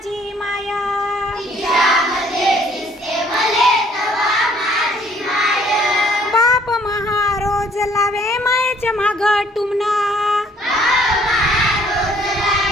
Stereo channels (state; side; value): normal; both; correlation 0.61